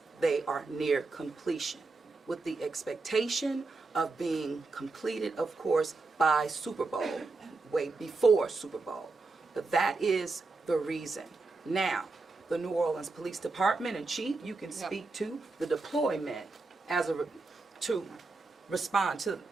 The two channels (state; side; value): quieter; left; 3.7 dB